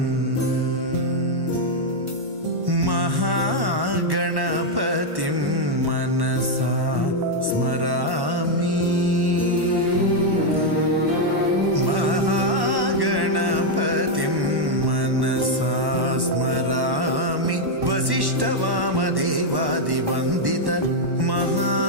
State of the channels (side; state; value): left; late; 1.1 ms